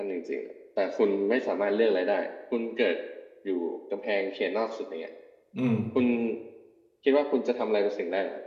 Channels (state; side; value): identical; both; correlation 1.00